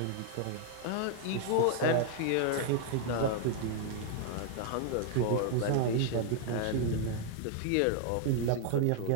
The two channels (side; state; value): both; different; correlation 0.00